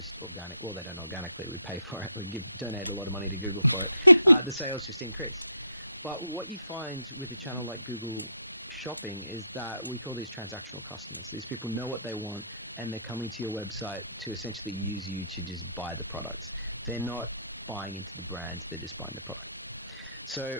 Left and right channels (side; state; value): both; inverted; correlation -0.71